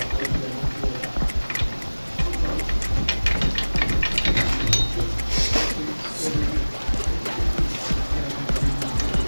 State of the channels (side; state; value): both; inverted; correlation -1.00